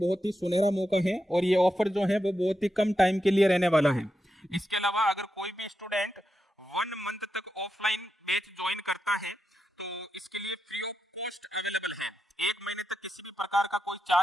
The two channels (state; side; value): normal; both; correlation 0.87